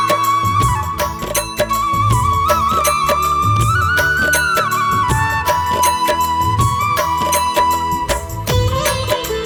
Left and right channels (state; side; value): identical; both; correlation 1.00